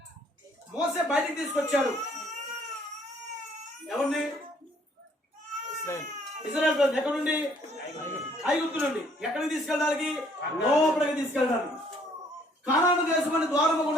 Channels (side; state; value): both; normal; correlation 0.63